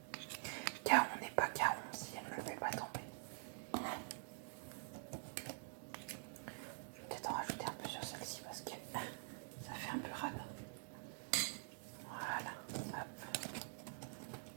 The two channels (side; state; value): left; silent; digital silence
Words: car on n'est pas caron si elle ne le fait pas tomber. Je vais peut-être en rajouter un peu sur celle-ci parce que ça fait un peu rade. Voilà, hop.